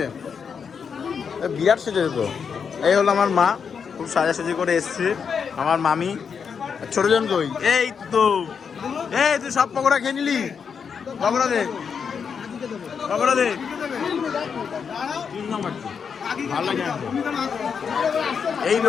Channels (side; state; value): right; quieter; 6.4 dB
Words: বিরাট সেজেছে তো। এই হলো আমার মা, খুব সাজাসাজি করে এসছে। আমার মামি। ছোটজন কই? এই তো। এই তুই সব পকোড়া খেয়ে নিলি? পকোড়া দে, পকোড়া দে। ভালো লাগে।